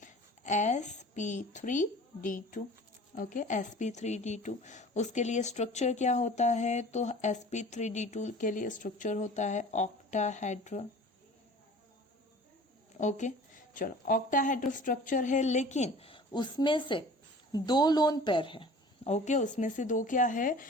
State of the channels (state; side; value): normal; both; correlation 0.44